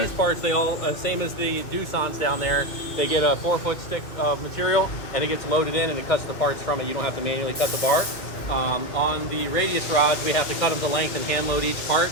parts, they all, same as the Doosan's down there, they get a 4-foot stick of material and it gets loaded in and it cuts the parts from it. You don't have to manually cut the bar. On the radius rods, we have to cut them to length and hand load each part.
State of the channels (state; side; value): late; right; 2.4 ms